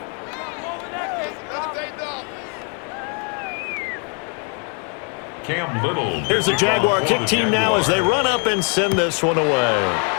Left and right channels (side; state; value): right; quieter; 39.2 dB